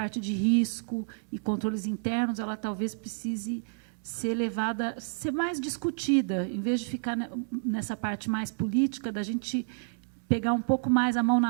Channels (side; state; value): left; silent; digital silence